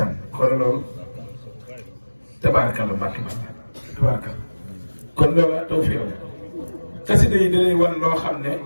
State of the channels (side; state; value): both; inverted; correlation -1.00